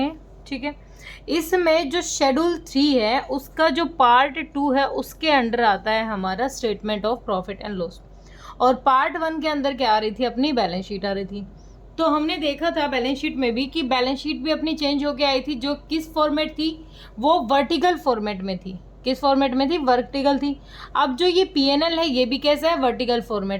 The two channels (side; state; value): both; identical; correlation 1.00